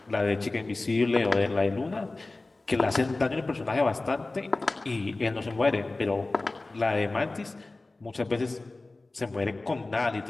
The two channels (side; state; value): right; quieter; 3.2 dB